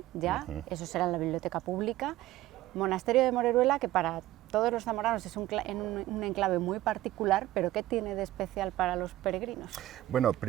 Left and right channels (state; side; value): quieter; left; 15.5 dB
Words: ya, eso será en la biblioteca pública. Monasterio de Moreruela, que para todos los zamoranos es un enclave muy particular, pero ¿qué tiene de especial para los peregrinos? Bueno,